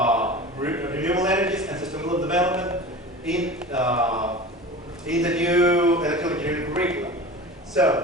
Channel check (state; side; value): normal; both; correlation 0.34